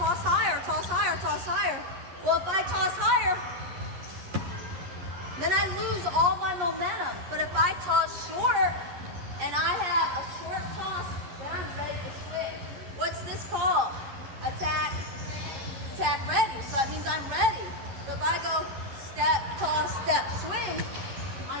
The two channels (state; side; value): late; left; 11 ms